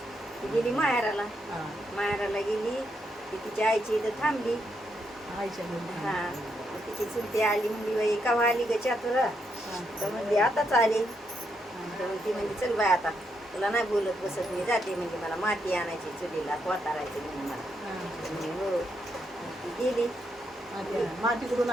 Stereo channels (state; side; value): normal; both; correlation 0.79